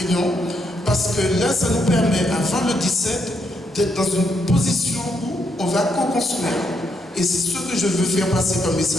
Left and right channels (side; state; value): both; normal; correlation 0.77